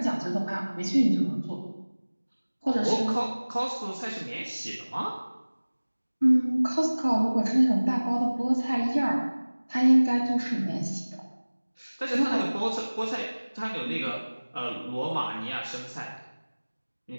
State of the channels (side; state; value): both; inverted; correlation -1.00